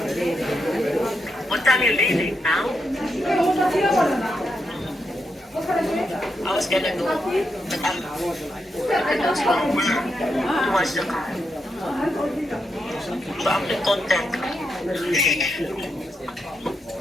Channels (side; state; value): both; normal; correlation 0.83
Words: What time you leaving now? I was gonna go, but I'm to watch the car. So I'm the content.